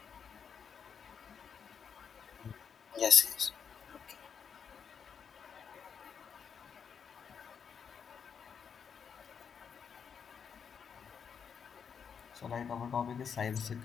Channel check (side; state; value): right; quieter; 7.0 dB